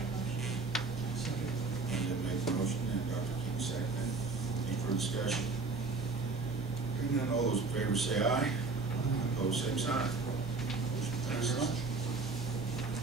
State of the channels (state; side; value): quieter; left; 4.0 dB